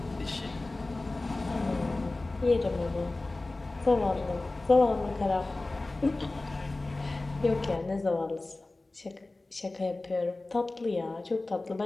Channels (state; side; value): quieter; right; 3.0 dB